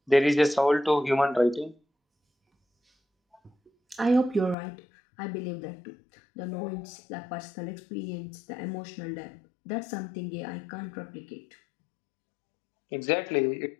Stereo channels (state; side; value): drops out; right; at 4.5 s